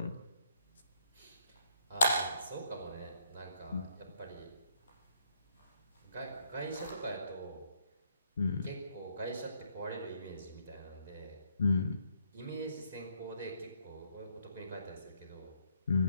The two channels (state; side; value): inverted; both; correlation -0.70